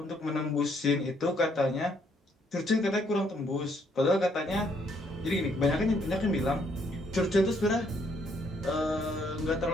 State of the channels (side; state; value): both; normal; correlation 0.69